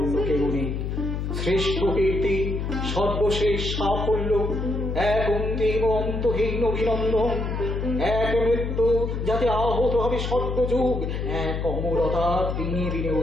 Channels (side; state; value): left; noise; hum, 3 dB below the sound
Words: কেউ নেই। শ্রেষ্ঠ কীর্তি, সর্বশেষ সাফল্য, এক অন্তিম অন্তহীন অভিনন্দন, এক মৃত্যু যাতে আহত হবে সর্বযুগ, এক অমরতা দিনে দিনে